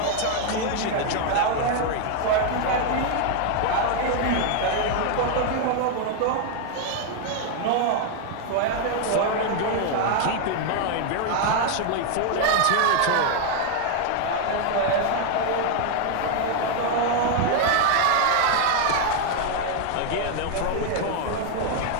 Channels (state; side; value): different; both; correlation 0.01